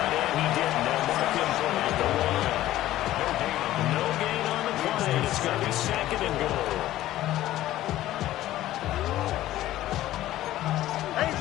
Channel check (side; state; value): right; quieter; 14.5 dB